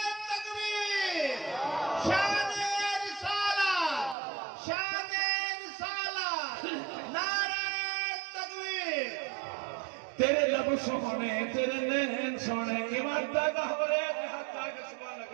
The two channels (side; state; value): left; drops out; at 4.2 s